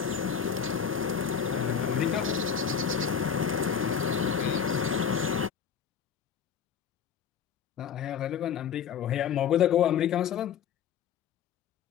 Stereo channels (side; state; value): right; quieter; 7.5 dB